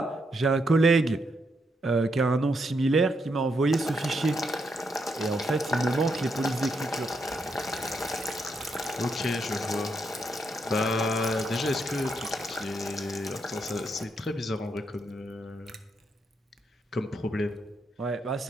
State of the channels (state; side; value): normal; both; correlation 0.79